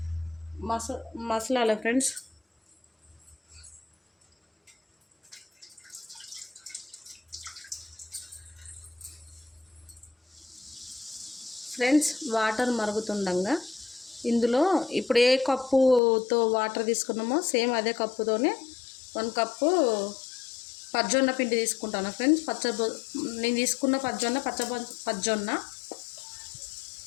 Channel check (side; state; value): right; drops out; at 16.0 s